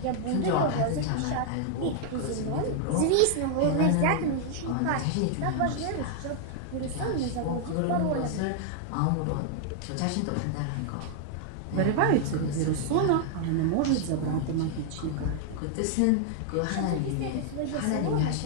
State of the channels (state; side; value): different; both; correlation 0.00